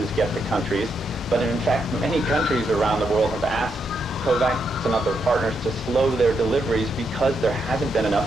get to countries. But in fact, many countries around the world have asked COVAX and other partners to slow their deliveries because there hasn't been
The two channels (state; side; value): normal; both; correlation 0.80